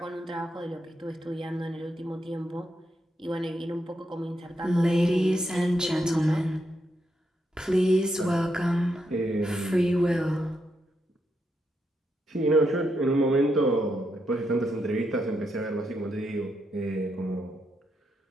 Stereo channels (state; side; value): normal; both; correlation 0.81